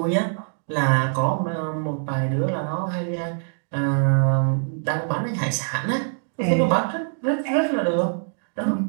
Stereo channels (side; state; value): left; silent; digital silence